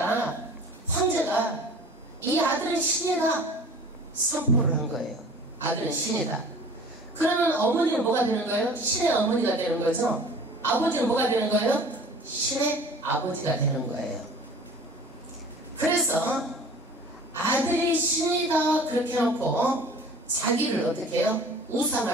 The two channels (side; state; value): both; normal; correlation 0.45